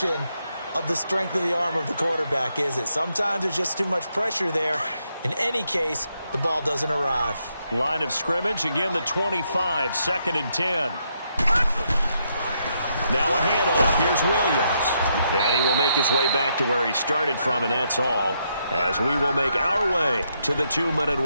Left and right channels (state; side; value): inverted; both; correlation -0.78